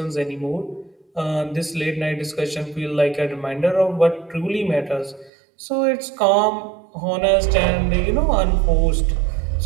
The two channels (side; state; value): left; drops out; at 5.3 s